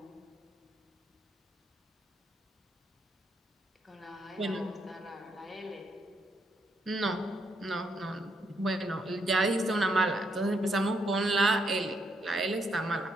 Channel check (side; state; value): both; normal; correlation 0.76